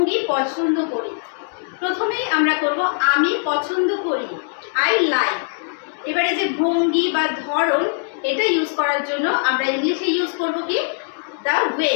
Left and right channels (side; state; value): right; silent; digital silence